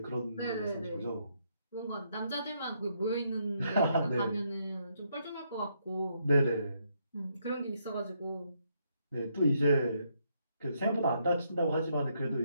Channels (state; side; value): inverted; both; correlation -0.75